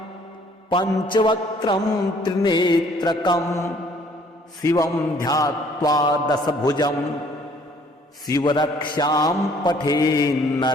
पञ्चवक्त्रं त्रिनेत्रकं शिवं ध्यात्वा दशभुजं शिवरक्षां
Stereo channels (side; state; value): both; normal; correlation 0.59